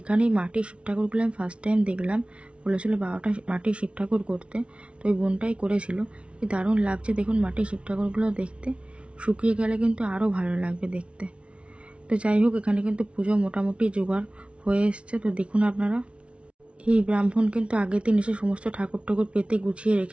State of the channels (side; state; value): left; late; 0.060 ms